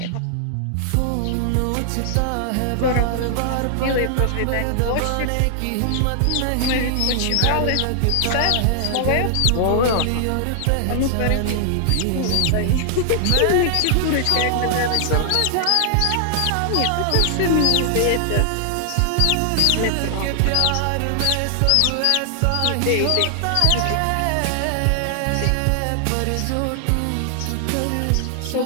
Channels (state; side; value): different; both; correlation 0.00